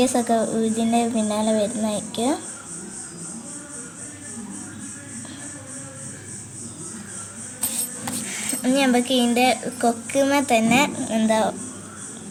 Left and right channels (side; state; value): both; identical; correlation 1.00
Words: ഇതിൻ്റെ പിന്നാലെ വരുന്നതായിരിക്കും. ഇനി നമുക്ക് ഇതിൻ്റെ കൊക്കുമേ തന്നെ